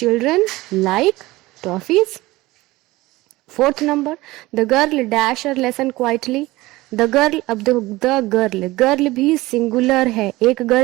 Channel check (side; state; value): left; quieter; 19.5 dB